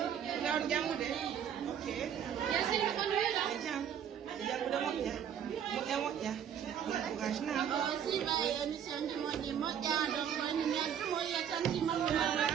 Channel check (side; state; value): left; quieter; 8.9 dB